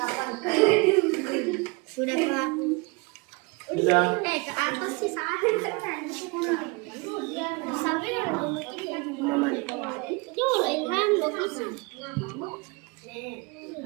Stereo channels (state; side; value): quieter; left; 28.3 dB